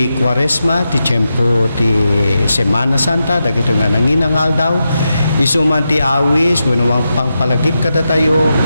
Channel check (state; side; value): inverted; both; correlation -0.88